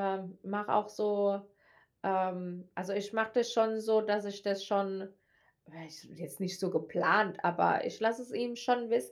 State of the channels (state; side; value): identical; both; correlation 1.00